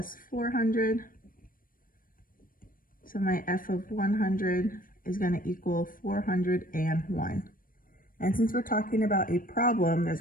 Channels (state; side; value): late; right; 0.41 ms